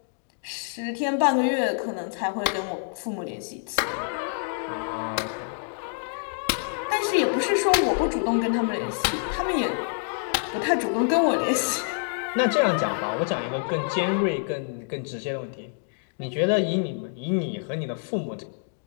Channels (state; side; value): silent; right; 59 dB below the other